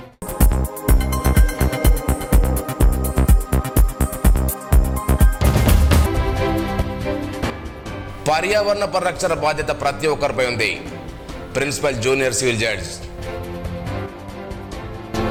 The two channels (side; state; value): both; identical; correlation 1.00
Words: పర్యావరణ పరిరక్షణ బాధ్యత ప్రతి ఒక్కరిపై ఉంది. Principal junior civil judge.